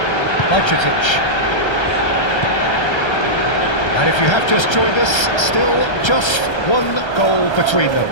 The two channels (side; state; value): right; late; 1.3 ms